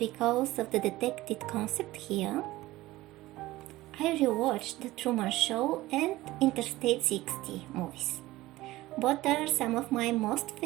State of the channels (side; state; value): left; quieter; 17.7 dB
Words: of the detected concept here, I rewatched The Truman Show and Interstate 60 movies. Both are some of my most